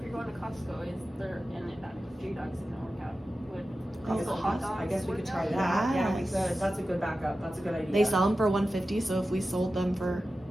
you're going to Costco, is there, and J Dogs isn't work out, would I guess Costco hot dogs I guess we work could try out? that. Yeah, we Yes. could. That's a good backup. That's a good idea. they sell them for 150. So if we sold them for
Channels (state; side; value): normal; both; correlation 0.93